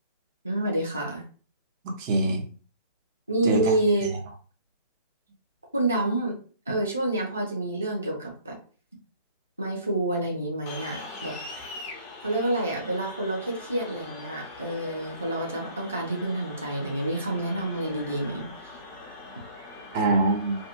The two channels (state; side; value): inverted; both; correlation -0.57